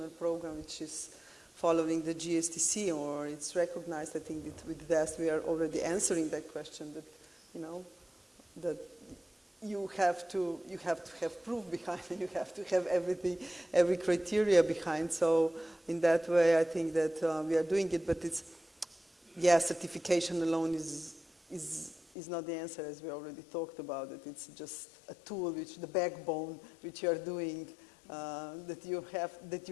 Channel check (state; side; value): drops out; right; at 22.1 s